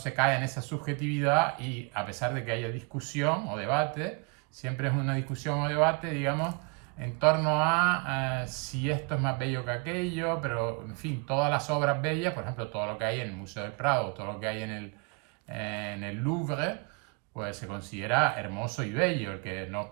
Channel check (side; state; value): left; quieter; 31.9 dB